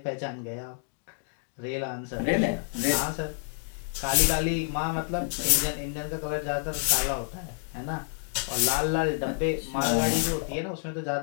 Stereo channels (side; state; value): right; silent; digital silence